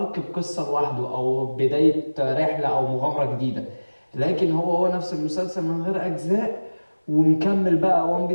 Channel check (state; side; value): inverted; both; correlation -1.00